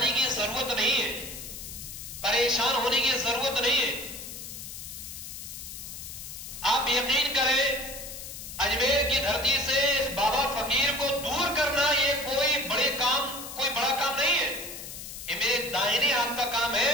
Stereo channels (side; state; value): left; noise; hiss, 10 dB below the sound